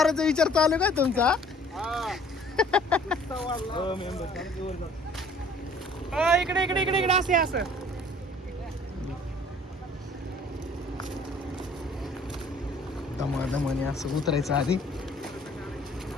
विचार चालू काय तुमचा? इकडे इकडे इकडे इकडे असे असं दमादमाने असं उतरायचं. आधी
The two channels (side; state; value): both; normal; correlation 0.54